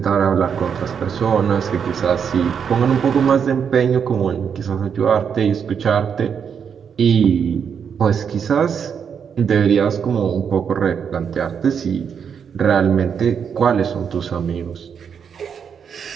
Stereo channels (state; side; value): quieter; left; 7.2 dB